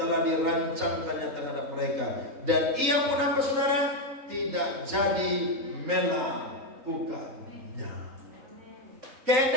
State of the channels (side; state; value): left; late; 3.9 ms